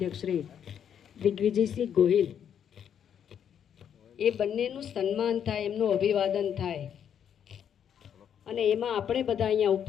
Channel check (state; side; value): quieter; right; 8.7 dB